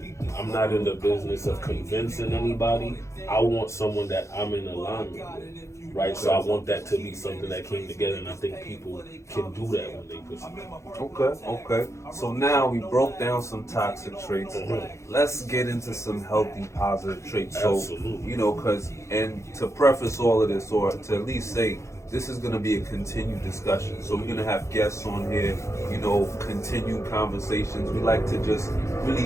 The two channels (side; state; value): right; late; 0.14 ms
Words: I'm not in the business of convincing anybody. I want someone that I'm in alignment with, right? So I Okay. want that to be something that came together, and I think people can do that when they pursue. Okay, okay. So now we broke down some toxic traits. Mhm. Let's get into some healthy, positive traits. So, Absolutely. because, and to preface all of this, or to at least say, this is going to be a continued discussion. So, we're going to have guests on here, continued conversations. We like to just